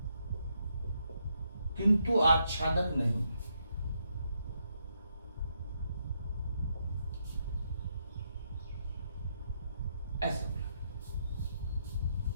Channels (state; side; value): inverted; both; correlation -0.78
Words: किंतु आच्छादक नहीं। ऐसा